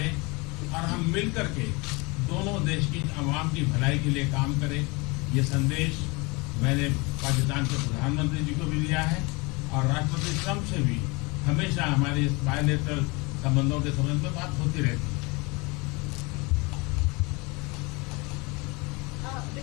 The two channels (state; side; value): quieter; right; 26.8 dB